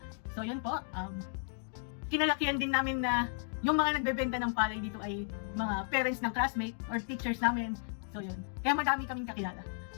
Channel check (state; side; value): silent; right; 55 dB below the other